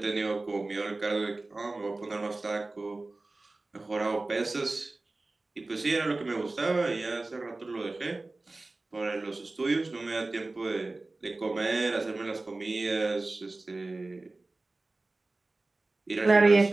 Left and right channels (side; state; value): left; quieter; 3.1 dB